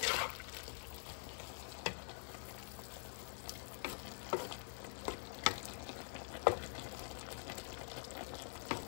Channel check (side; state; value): right; silent; digital silence